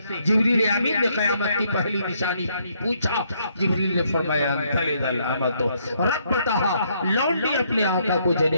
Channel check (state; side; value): inverted; both; correlation -0.71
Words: جبریل امین نے قیامت کی پہلی نشانی پوچھا. جبریل نے فرمایا تلد الامۃ ربتہا, لونڈی اپنے آقا کو